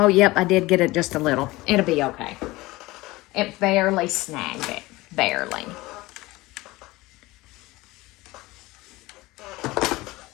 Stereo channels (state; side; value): quieter; right; 20.2 dB